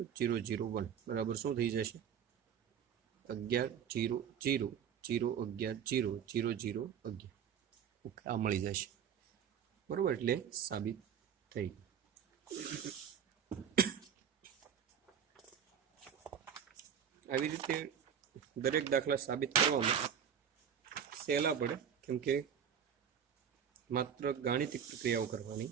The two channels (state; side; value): quieter; left; 8.2 dB